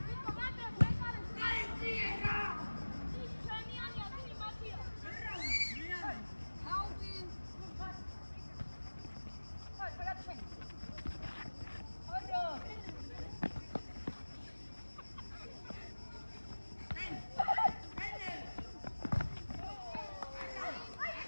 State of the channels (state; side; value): inverted; both; correlation -1.00